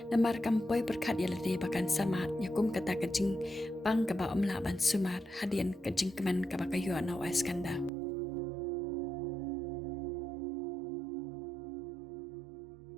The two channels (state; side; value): drops out; left; at 7.9 s